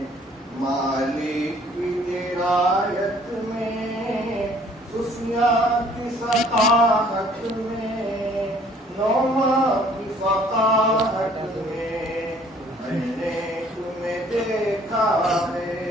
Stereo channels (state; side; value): normal; both; correlation 0.57